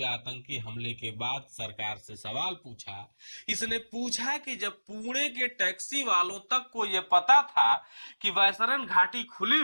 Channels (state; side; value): inverted; both; correlation -1.00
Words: आतंकी हमले के बाद सरकार से सवाल पूछा। इसने पूछा कि जब पुणे के टैक्सी वालों तक को यह पता था कि वैसरन घाटी खुली